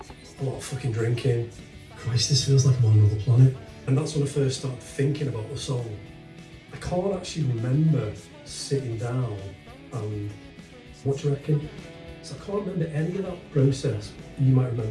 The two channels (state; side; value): identical; both; correlation 1.00